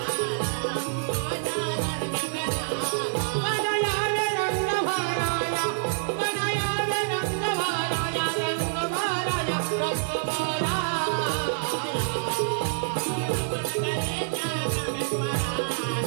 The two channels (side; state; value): left; silent; digital silence